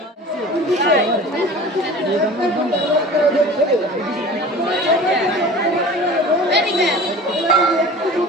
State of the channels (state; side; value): normal; both; correlation 0.40